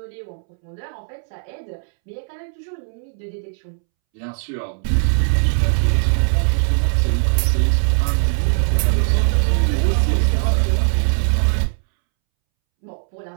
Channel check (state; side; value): silent; left; 66 dB below the other